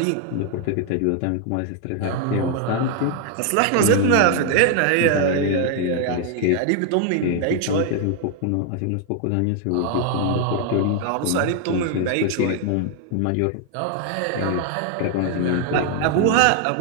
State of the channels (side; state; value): both; different; correlation 0.00